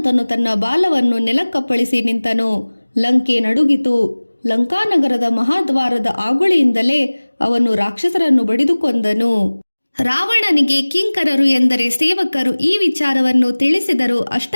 ತನ್ನ ಬಾಲವನ್ನು ನೆಲಕ್ಕಪ್ಪಳಿಸಿ ನಿಂತನು. ಲಂಕೆ ನಡುಗಿತು. ಲಂಕಾನಗರದ ಮಹಾದ್ವಾರದ ಆಗುಳಿಯಿಂದಲೇ ಅವನು ರಾಕ್ಷಸರನ್ನು ಬಡಿದು ಕೊಂದನು. ರಾವಣನಿಗೆ ಕಿಂಕರರು ಎಂದರೆ ಸೇವಕರು ಈ ವಿಚಾರವನ್ನು ತಿಳಿಸಿದರು.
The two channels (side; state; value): both; inverted; correlation -1.00